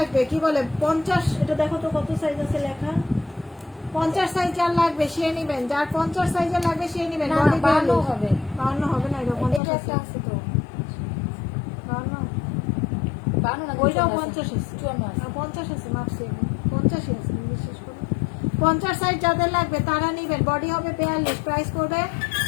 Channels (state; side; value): drops out; right; at 9.6 s